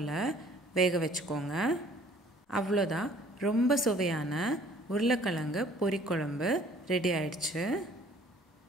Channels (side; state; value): both; normal; correlation 0.55